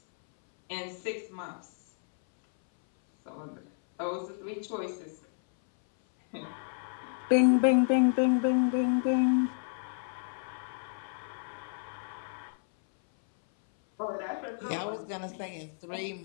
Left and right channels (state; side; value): silent; right; 57 dB below the other